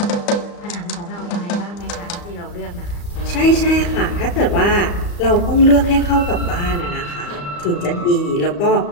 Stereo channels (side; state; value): right; late; 34 ms